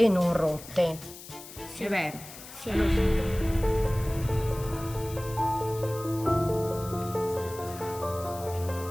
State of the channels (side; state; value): left; noise; hiss, 15 dB below the sound